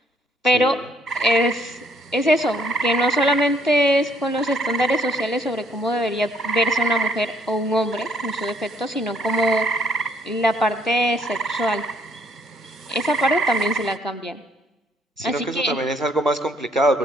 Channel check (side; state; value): both; normal; correlation 0.66